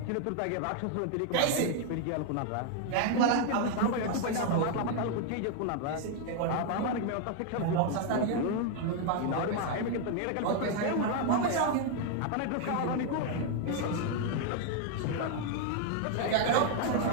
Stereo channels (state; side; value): different; both; correlation 0.00